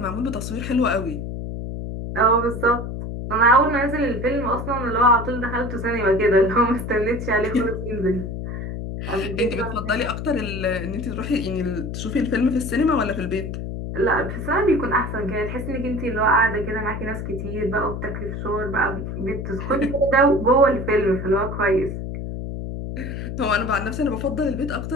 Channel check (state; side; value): noise; left; hum, 6 dB below the sound